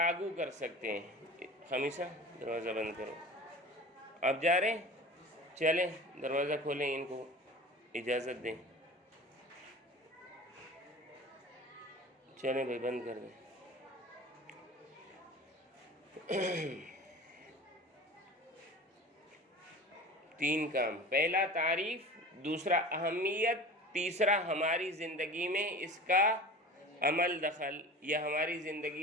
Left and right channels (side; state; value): both; normal; correlation 0.37